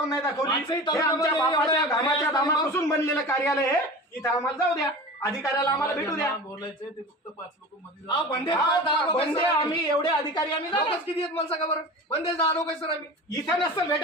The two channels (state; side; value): normal; both; correlation 0.34